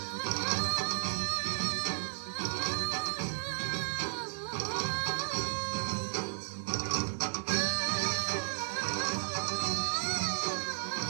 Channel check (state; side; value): silent; left; 55 dB below the other